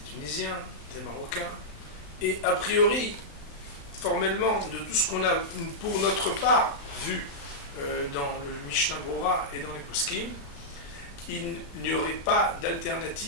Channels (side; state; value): right; late; 35 ms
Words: Tunisiens, des Marocains, et a priori, formellement, de tout ce qu'on a pour notre part vu dans le Mishnah Bora et dans les Poskim, il n'y aurait pas